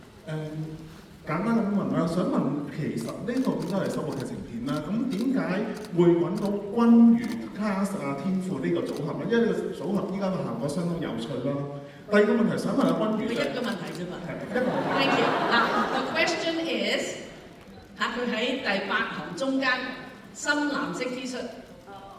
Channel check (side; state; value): both; identical; correlation 1.00